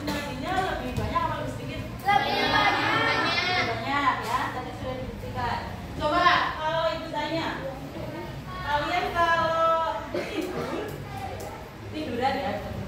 nadinya lebih banyak atau lebih sedikit? Lebih banyak. Lebih banyak ya, tadi sudah dibuktikan. Coba kalau ibu tanya, kalian kalau tiduran ya,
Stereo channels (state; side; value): identical; both; correlation 1.00